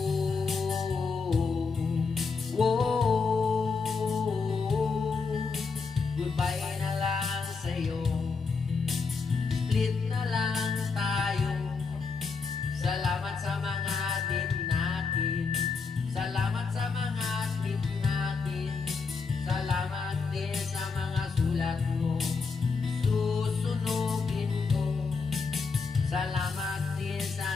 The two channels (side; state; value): right; quieter; 4.7 dB